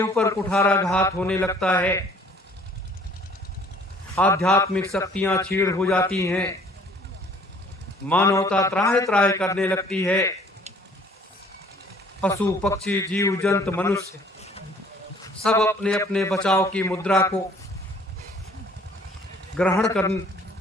ऊपर कुठाराघात होने लगता है, आध्यात्मिक शक्तियां छीड़ हो जाती हैं, मानवता त्राहि त्राहि करने लगती है, पशु पक्षी जीव जंतु मनुष्य सब अपने अपने बचाव की मुद्रा को ग्रहण कर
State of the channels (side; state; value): both; normal; correlation 0.56